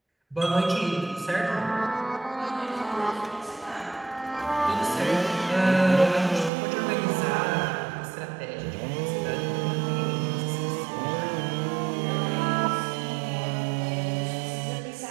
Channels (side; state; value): left; drops out; at 6.5 s